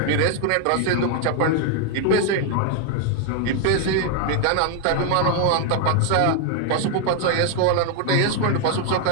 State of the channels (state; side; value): different; both; correlation 0.00